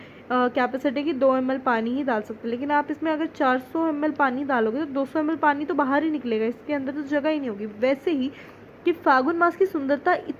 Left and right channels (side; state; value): both; identical; correlation 1.00